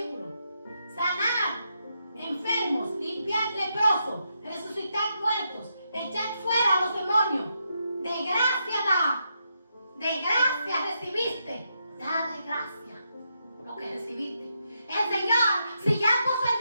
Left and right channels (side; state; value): both; inverted; correlation -0.81